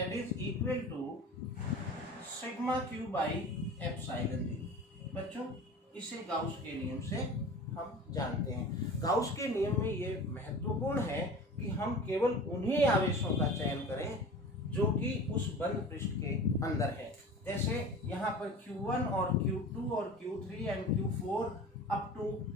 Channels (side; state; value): both; normal; correlation 0.37